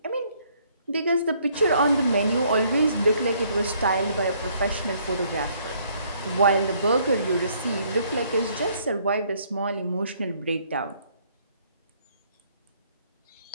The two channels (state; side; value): inverted; both; correlation -0.65